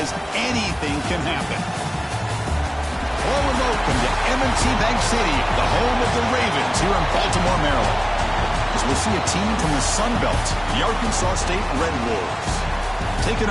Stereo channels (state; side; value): identical; both; correlation 1.00